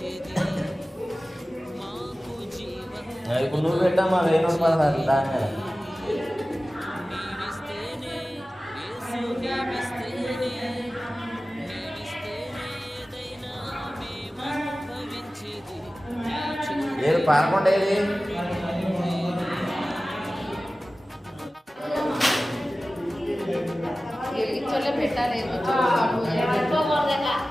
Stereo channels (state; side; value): normal; both; correlation 0.96